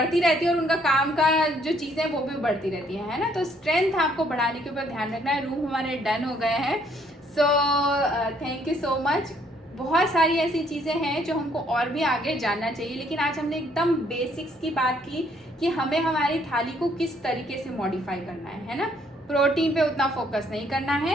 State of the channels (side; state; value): both; normal; correlation 0.66